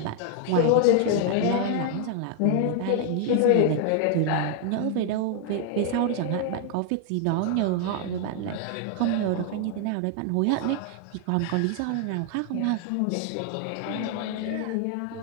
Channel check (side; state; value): both; different; correlation 0.00